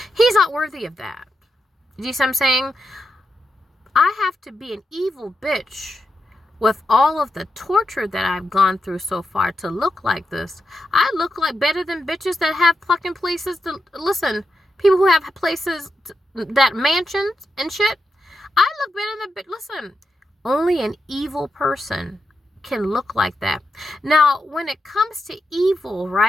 He's not worthy of that. Do you see what I'm saying? I have to be an evil bitch with all of the torture that I've gone through so far to look like this. I look like better than bitches that have fucking places to listen. People who have places that mansions and shit. I look better than listen. Only an evil person can look like that. Now, when it comes to evil,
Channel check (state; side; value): normal; both; correlation 0.87